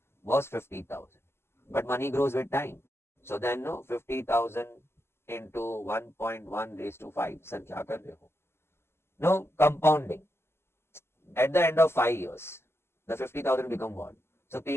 was 50,000. But money grows with time. So then 50,000 into 1.1 raised to 5. Sir, kya kar rahe ho? No, compounding. At the end of 5 years, the 50,000 become what? So P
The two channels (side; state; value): right; late; 0.12 ms